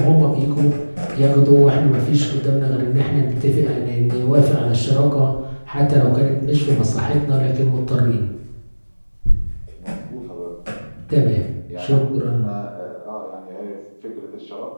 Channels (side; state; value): both; inverted; correlation -1.00